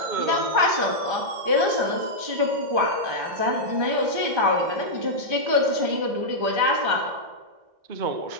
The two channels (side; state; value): left; late; 1.3 ms